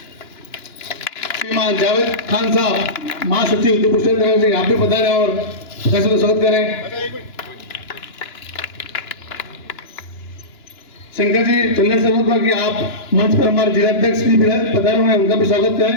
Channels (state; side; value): late; right; 2.9 ms